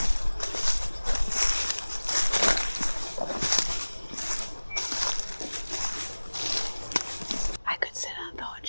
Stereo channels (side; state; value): both; inverted; correlation -1.00